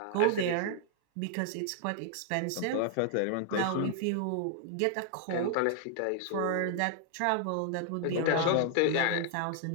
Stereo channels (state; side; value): different; both; correlation 0.00